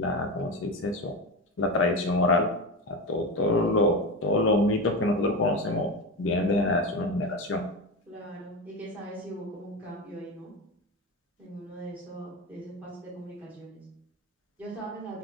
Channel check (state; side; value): normal; both; correlation 0.20